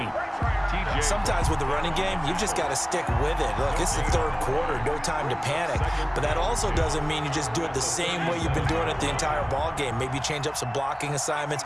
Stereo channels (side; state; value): both; identical; correlation 1.00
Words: Sometimes with the running game, you've just got to stick with it. Look, it's the 3rd quarter, no time to panic. But that also doesn't mean you just do it the same way you've been doing it the entire ball game. Maybe change up some blocking assignments